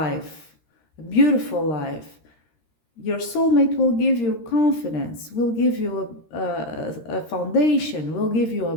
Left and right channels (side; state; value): right; late; 13 ms